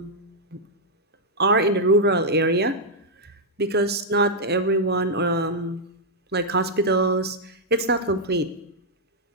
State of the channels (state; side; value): normal; both; correlation -0.05